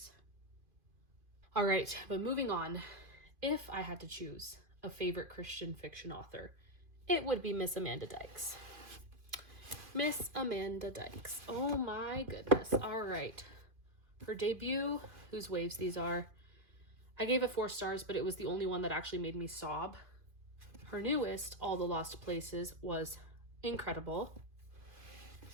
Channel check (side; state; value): left; late; 2.3 ms